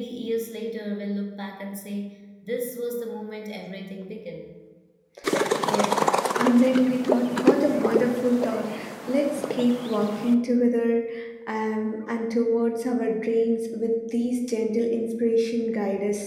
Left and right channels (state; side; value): identical; both; correlation 1.00